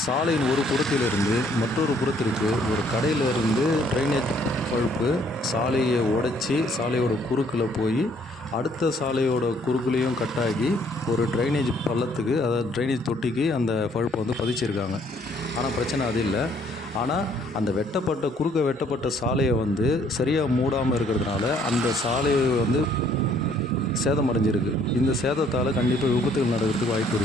சாலையின் ஒரு புறத்திலிருந்து மற்றொரு புறத்திற்கு ஒரு கடையிலேருந்து ட்ரைனேஜ் பழுப்பு சாலையை உடைச்சி சாலையோட குறுக்கில் போய் அடுத்த சாலையோட குறுக்குலேயும் கட்டாகி ஒரு ட்ரைனேஜ் பள்ளத்துக்கு, அதாவது ட்ரைனேஜ் தொட்டிக்கு அந்த பழுப்பை வந்து பதிச்சிருக்காங்க. ஆனால் பிரச்சனை அது இல்லை. ஆனால் அந்த குறுக்க வெட்டப்பட்ட சாலையை வந்து சரியாக மூடாமல் இருக்கிறதுனால அந்த சாலையை வந்து சேதமடைஞ்சிருக்கு. இந்த சேதத்தால் கண்டிப்பாக விபத்துகள் நடக்கிறதுக்கு வாய்ப்பு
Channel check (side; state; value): both; normal; correlation 0.63